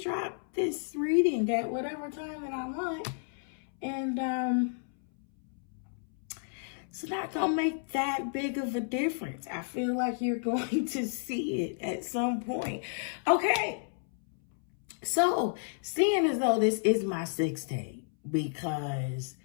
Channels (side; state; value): right; silent; 57 dB below the other